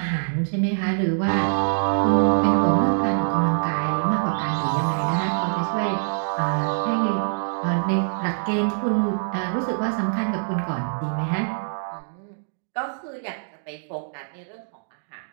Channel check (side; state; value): left; silent; digital silence